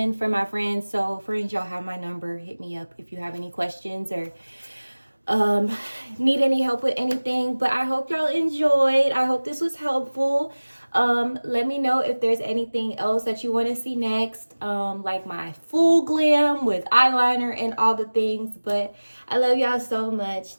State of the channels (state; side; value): inverted; both; correlation -1.00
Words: for my friends. So friends, y'all have my number. Hit me up if you have any questions or need any help with anything. But I hope y'all enjoyed. I hope this was helpful. Let me know if there's anything else that you want to see next, like my full glam with eyeliner and all the things. But I love y'all so much.